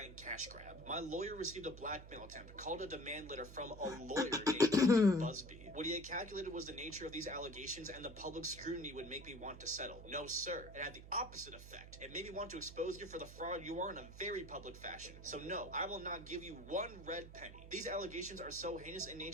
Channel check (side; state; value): right; noise; hum, 14 dB below the sound